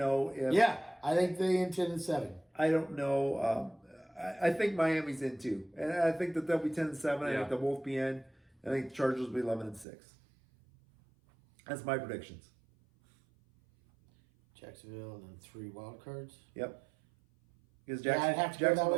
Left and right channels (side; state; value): left; drops out; at 9.9 s